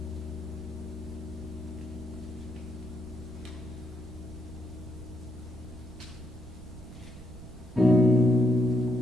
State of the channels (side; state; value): right; noise; rumble, 15 dB below the sound